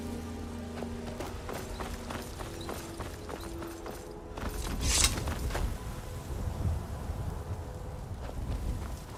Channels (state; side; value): identical; both; correlation 1.00